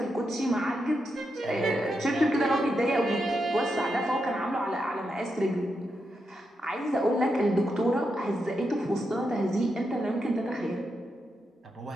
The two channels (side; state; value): both; normal; correlation 0.85